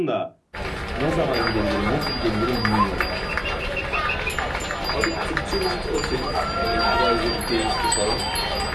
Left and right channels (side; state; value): both; identical; correlation 1.00